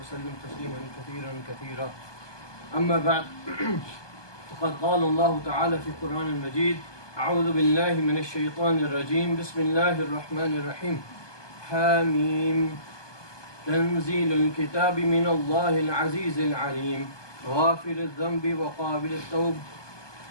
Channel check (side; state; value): right; late; 1.2 ms